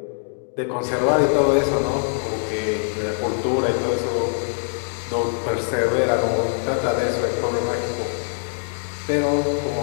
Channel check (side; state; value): right; silent; digital silence